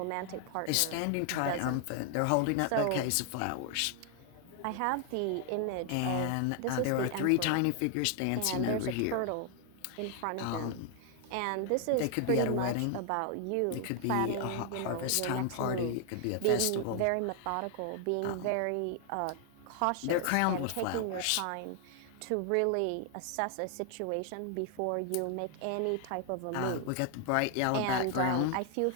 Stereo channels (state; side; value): different; both; correlation 0.00